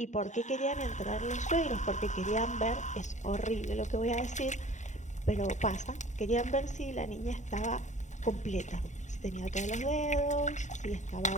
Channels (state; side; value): late; right; 0.35 ms